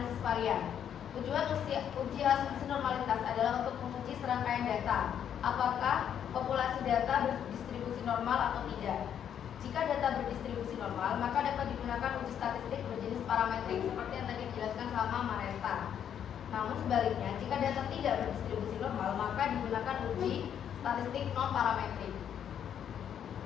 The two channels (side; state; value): right; quieter; 9.1 dB